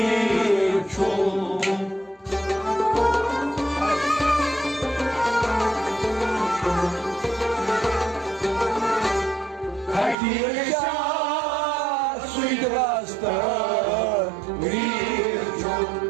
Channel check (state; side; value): drops out; left; at 10.2 s